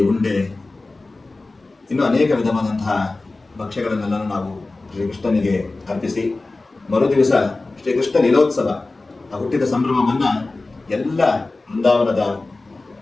ಉಂಡೆ, ಇನ್ನೂ ಅನೇಕ ವಿಧವಾದಂತಹ ಭಕ್ಷ್ಯಗಳನ್ನೆಲ್ಲ ನಾವು ಶ್ರೀಕೃಷ್ಣನಿಗೆ ಅರ್ಪಿಸಿ, ಮರುದಿವಸ ಶ್ರೀಕೃಷ್ಣ ಲೀಲೋತ್ಸವ, ಆ ಹುಟ್ಟಿದ ಸಂಭ್ರಮವನ್ನು ಎಲ್ಲ ವೃಂದಾವನದ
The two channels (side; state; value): right; quieter; 3.3 dB